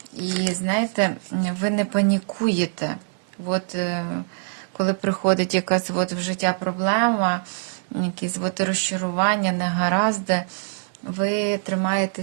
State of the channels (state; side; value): silent; left; digital silence